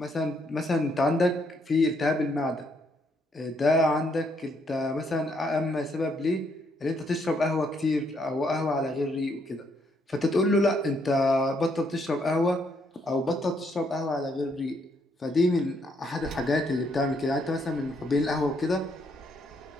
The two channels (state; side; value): normal; both; correlation 0.72